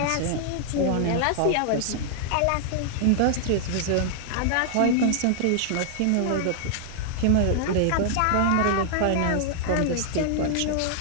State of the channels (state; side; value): different; both; correlation 0.00